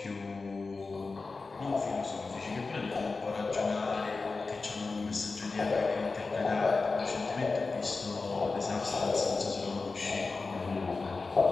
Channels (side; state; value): right; quieter; 4.0 dB